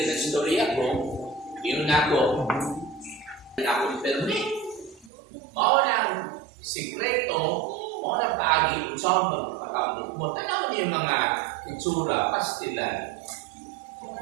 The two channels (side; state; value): left; drops out; at 5.1 s